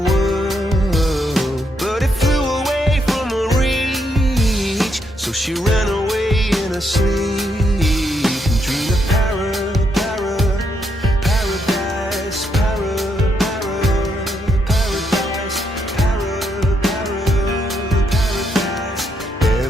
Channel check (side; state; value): both; normal; correlation 0.77